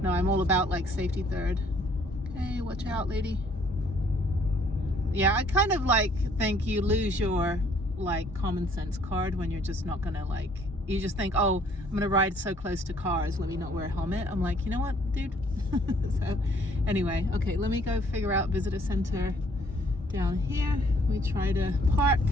No, I'm all about like safety third. Okay, watch out, lady. Yeah, I kind of like think you lose your like common sense card when you're just not gonna like, you just think, oh, I'm gonna ride so close to cars, let me not wear a helmet. I'm like, you know what, dude? So anyway, okay, let me go figure out visitor center down here. We try to park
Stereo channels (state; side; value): normal; both; correlation 0.61